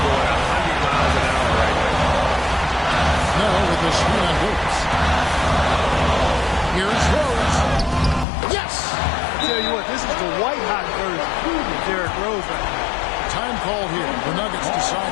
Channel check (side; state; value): right; drops out; at 8.2 s